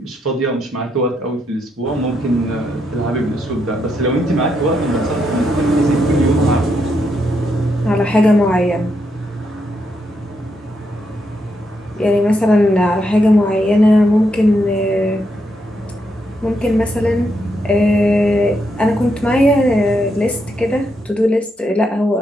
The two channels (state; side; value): normal; both; correlation 0.80